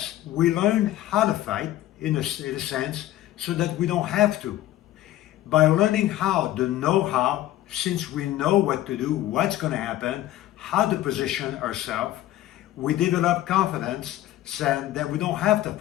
we learn how to fight in a sense so that we don't have to. By learning how, the know-how, since we know what to do, what's going to happen, how to position ourselves, we develop confidence saying that we don't have to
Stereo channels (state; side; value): quieter; right; 14.2 dB